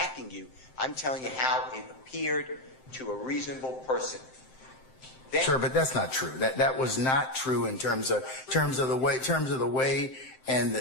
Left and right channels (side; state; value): right; late; 7.7 ms